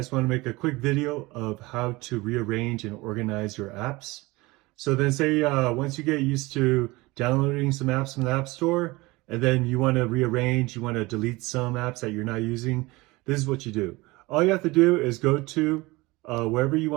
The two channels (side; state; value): left; quieter; 22.1 dB